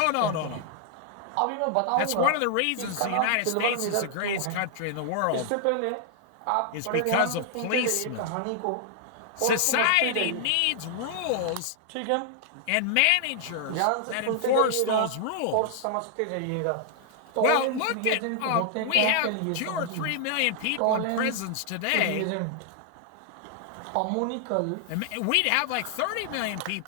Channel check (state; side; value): different; both; correlation 0.00